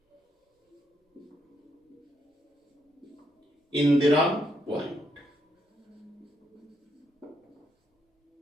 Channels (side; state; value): both; normal; correlation 0.77